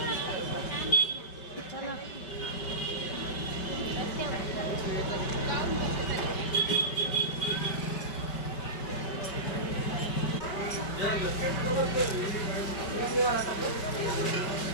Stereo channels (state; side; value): late; right; 5.2 ms